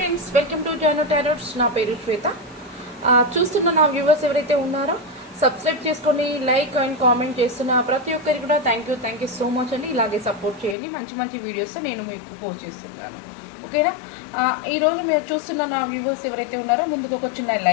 welcome to Jano tarots. నా పేరు శ్వేత. చూస్తున్న నా వ్యూవర్స్ ఎవరైతే ఉన్నారో సబ్స్క్రైబ్ చేసుకొని లైక్ అండ్ కామెంట్ చేస్తున్న ప్రతి ఒక్కరికి కూడా థ్యాంక్ యూ సో మచ్ అండి. ఇలాగే సపోర్ట్ చేయండి. మంచి వీడియోస్ నేను మీకు పోస్ట్ చేస్తున్నాను, ఓకేనా. ఈరోజు మీరు చూస్తున్న నా వ్యూవర్స్ ఎవరైతే ఉన్నారో ముందుకు ఒక చిన్న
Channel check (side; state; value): right; drops out; at 10.8 s